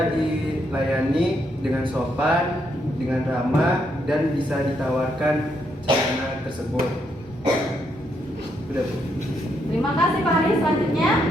dilayani dengan sopan, dengan ramah, dan bisa ditawarkan celana tersebut. Udah, Bu. Terima kasih Pak Haris. Selanjutnya.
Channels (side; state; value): both; normal; correlation 0.77